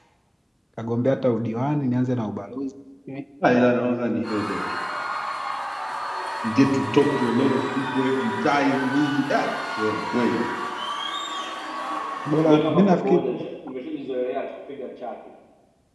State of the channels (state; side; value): identical; both; correlation 1.00